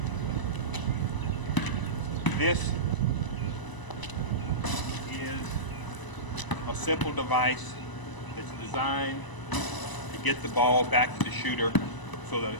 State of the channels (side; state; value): right; late; 1.0 ms